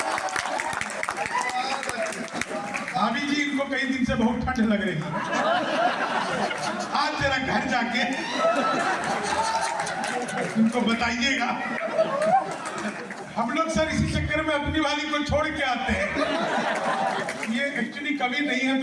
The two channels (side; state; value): both; identical; correlation 1.00